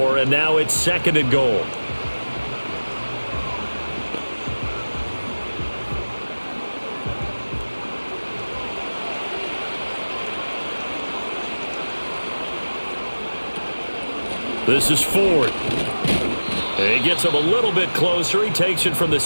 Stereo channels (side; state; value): both; inverted; correlation -1.00